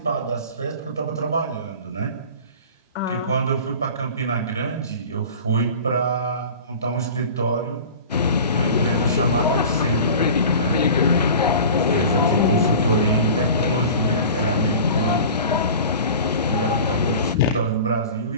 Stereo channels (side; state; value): both; inverted; correlation -0.38